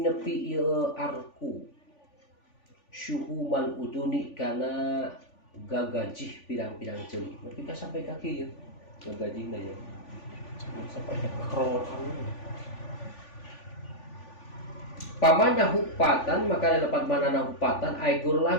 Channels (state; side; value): late; right; 3.5 ms